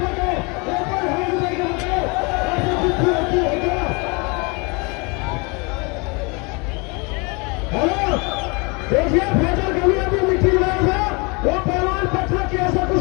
देखिए फैजल कभी अभी मिट्टी रहा था, वो पहलवान पटना की ऐसा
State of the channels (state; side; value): quieter; right; 29.9 dB